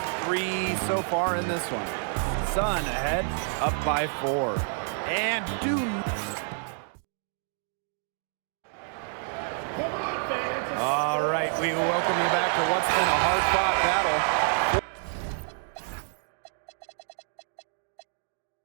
3 so far in this one. Sun ahead, up by 4. And all right, we welcome you back to what's been a hard-fought battle.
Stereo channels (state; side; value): silent; left; 59 dB below the other